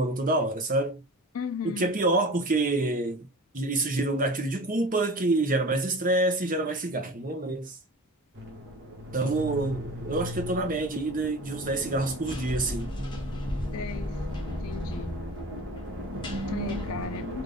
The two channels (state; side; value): normal; both; correlation 0.37